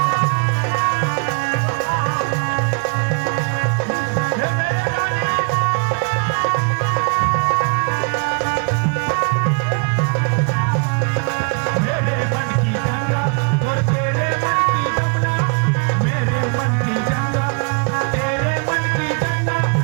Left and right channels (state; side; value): quieter; left; 34.8 dB